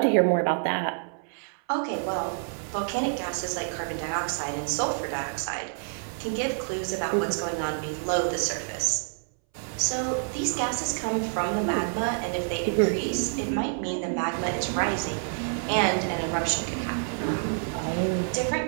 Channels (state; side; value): silent; left; 60 dB below the other